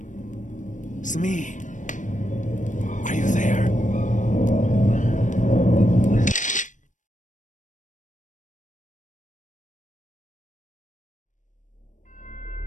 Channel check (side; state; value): right; late; 0.37 ms